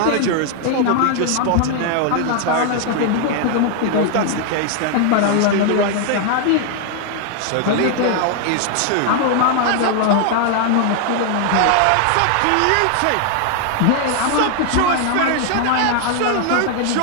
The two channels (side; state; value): both; different; correlation 0.00